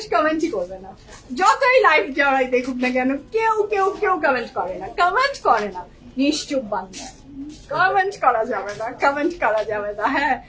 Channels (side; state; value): both; identical; correlation 1.00